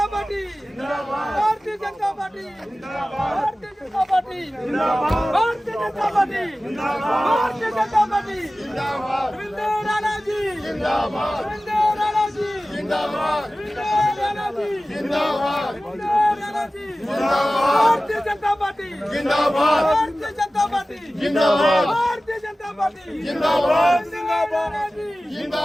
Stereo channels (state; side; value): normal; both; correlation 0.96